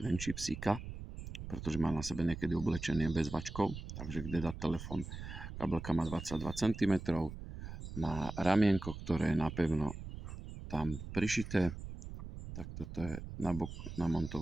venčí psíka, pretože má na sebe niekedy oblečenie bez vačkov, takže kde dať telefón. Kabelka má 22 cm, má ramienko, ktoré je napevno tam prišité, tak toto je nabok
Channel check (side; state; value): right; noise; rumble, 9 dB below the sound